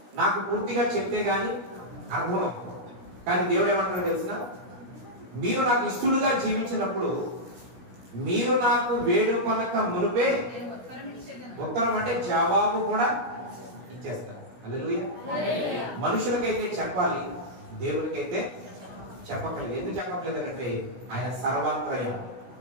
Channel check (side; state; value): left; late; 16 ms